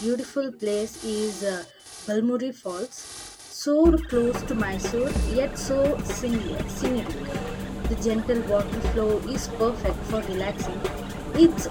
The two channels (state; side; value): identical; both; correlation 1.00